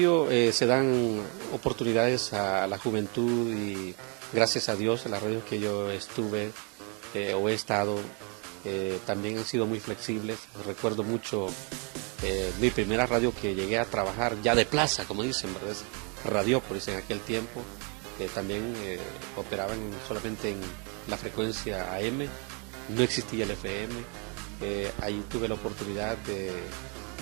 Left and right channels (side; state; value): left; quieter; 35.1 dB